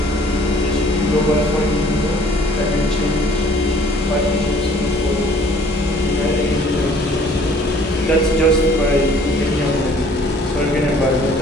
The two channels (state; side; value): normal; both; correlation 0.56